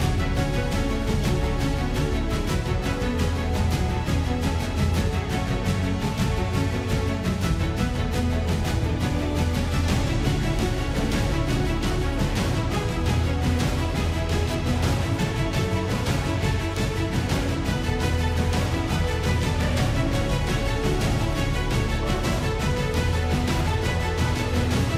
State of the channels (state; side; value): identical; both; correlation 1.00